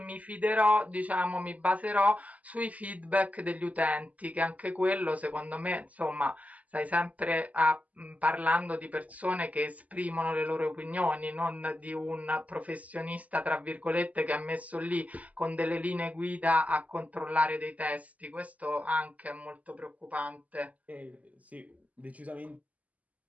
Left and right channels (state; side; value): late; left; 0.073 ms